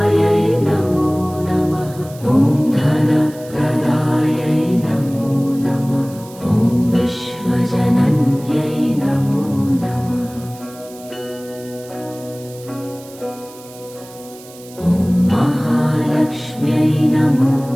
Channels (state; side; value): noise; right; hiss, 21 dB below the sound